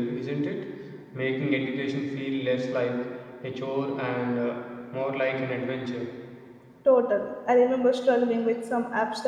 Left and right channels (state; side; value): identical; both; correlation 1.00